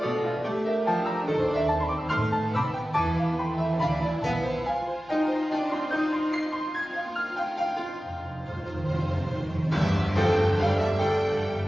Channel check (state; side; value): normal; both; correlation 0.95